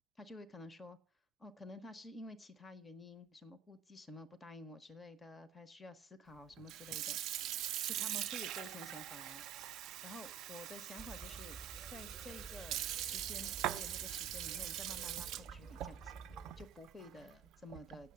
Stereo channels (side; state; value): left; quieter; 7.7 dB